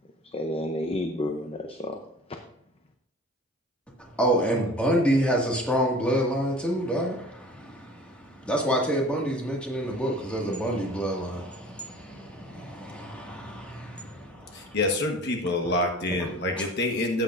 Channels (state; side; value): normal; both; correlation 0.44